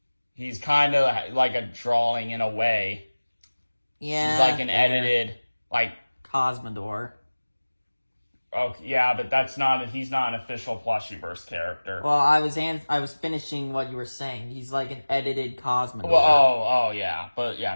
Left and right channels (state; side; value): inverted; both; correlation -1.00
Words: of like a drawing in a way. Yeah. He's like an edited, like... Cosmodor. Oh, yeah, but he's not an official Plushyverse character. Well, I was finishing what you were saying. He's like an edited Cosmodor. Well, yeah, but yeah,